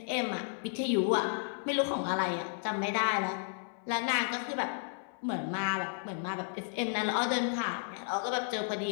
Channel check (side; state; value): right; silent; 56 dB below the other